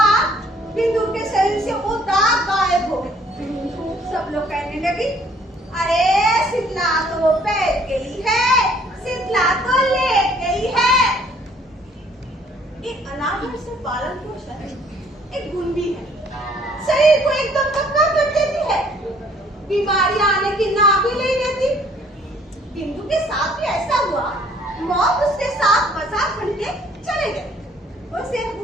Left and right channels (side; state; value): both; normal; correlation 0.60